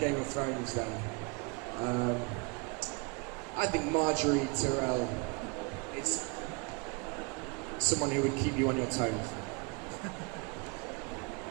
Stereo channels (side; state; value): left; quieter; 30.8 dB